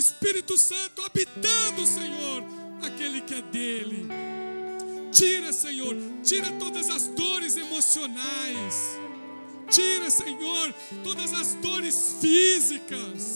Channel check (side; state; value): both; inverted; correlation -1.00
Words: Santo habitando, Senhor, aquele que é dele. Tira, Senhor, tira todas as dores emocionais. Tira, Senhor, todas as dores